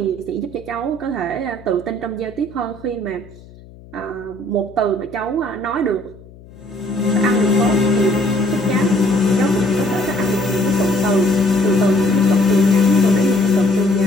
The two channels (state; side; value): noise; left; hum, 21 dB below the sound